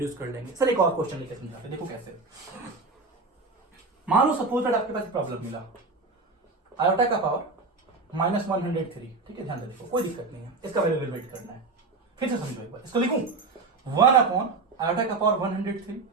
कर लेंगे। सर एक और क्वेश्चन लेके समझाते हैं, देखो कैसे। मान लो सपोज दैट आपके पास प्रॉब्लम मिला, आयोटा का पावर -103, ठीक है, ध्यान से देखो, कोई दिक्कत नहीं है, इसका वैल्यू इवेलुएट करना है। फिर से समझो एक बार, इसको लिखूं 1 अपॉन आयोटा का पावर 103,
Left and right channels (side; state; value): left; quieter; 3.9 dB